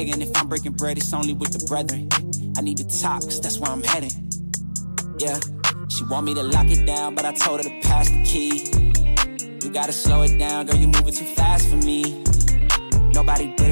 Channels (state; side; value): inverted; both; correlation -1.00